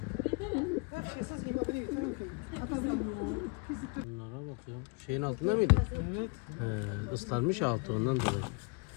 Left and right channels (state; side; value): quieter; right; 31.8 dB